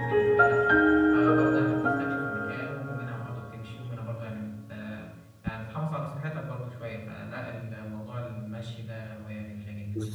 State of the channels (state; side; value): identical; both; correlation 1.00